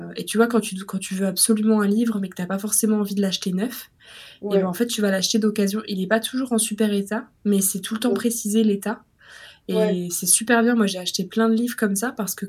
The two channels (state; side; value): identical; both; correlation 1.00